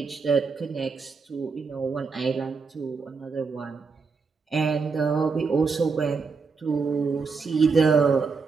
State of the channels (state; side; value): quieter; left; 4.9 dB